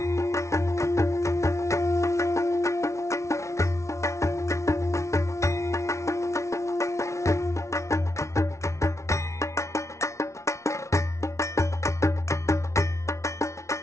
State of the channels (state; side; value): late; right; 0.14 ms